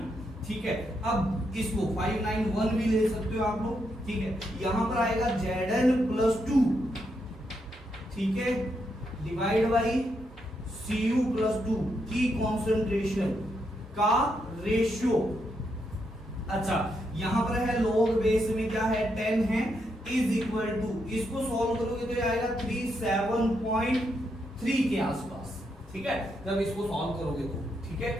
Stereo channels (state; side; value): normal; both; correlation 0.80